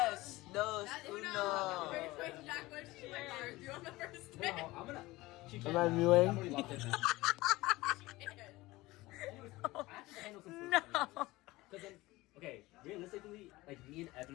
Dos. Uno. Wait, Jack, what did she like ours? You on the first day? Am I mewing? No. Okay, realistically, like me and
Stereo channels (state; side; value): quieter; right; 19.6 dB